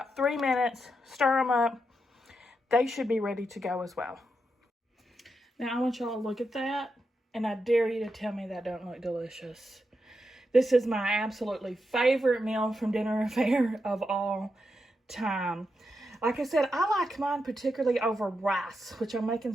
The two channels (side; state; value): both; normal; correlation 0.85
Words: 3 minutes, stir them up. They should be ready to go as well. Now I want y'all to look at that, and I dare you to tell me that don't look delicious. This is my absolutely favorite meal from Dinner Affair of all time. Like I said, I like mine particularly over rice, which I'm making